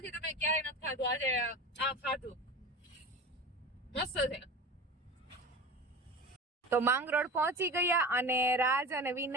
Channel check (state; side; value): normal; both; correlation 0.32